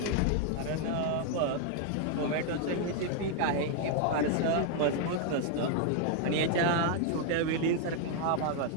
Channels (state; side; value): different; both; correlation 0.00